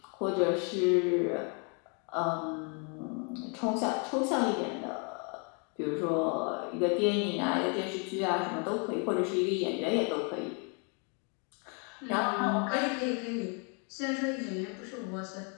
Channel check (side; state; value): right; quieter; 37.5 dB